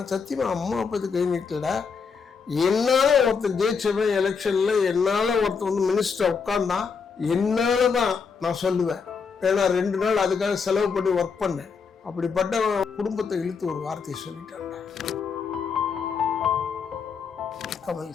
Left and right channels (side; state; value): right; quieter; 5.6 dB